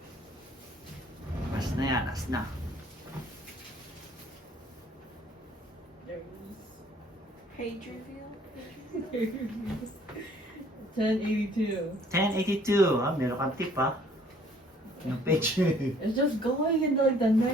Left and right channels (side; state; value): both; normal; correlation 0.58